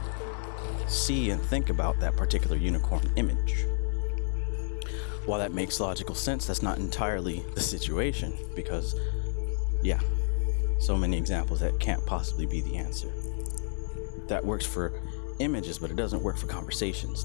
see and think about that particular unicorn image. While that makes logical sense, that's not entirely the situation because, so many examples that can't possibly be the answer. That works for images, but it doesn't work for conversations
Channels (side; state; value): right; silent; 58 dB below the other